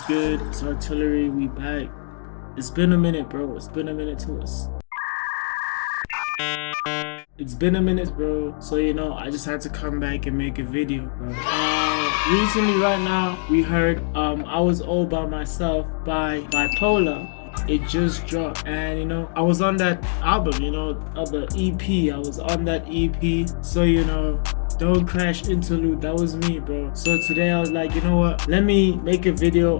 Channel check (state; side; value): silent; right; digital silence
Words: good? It's Artillery. We back. It's been a minute, bro. It's been a minute to us. It's been a minute, bro. So I just had to come back and make a video, bro. Recently, right now, we heard "I Was All By Myself" by Bipolarr. It just dropped, and I was on that album, of the EP. I was on that EP, so Don't Crash interlude, that was me, bro. So today I was like, you know what? Let me make a video